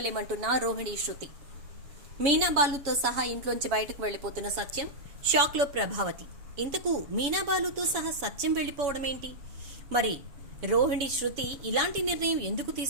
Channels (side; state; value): left; late; 7.1 ms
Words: రోహిణి శృతి. మీనా బాలుతో సహా ఇంట్లోంచి బయటకు వెళ్ళిపోతున్న సత్యం, షాక్లో ప్రభావతి. ఇంతకు మీనా బాలుతో సహా సత్యం వెళ్ళిపోవడం ఏంటి? మరి రోహిణి శృతి ఇలాంటి నిర్ణయం ఎందుకు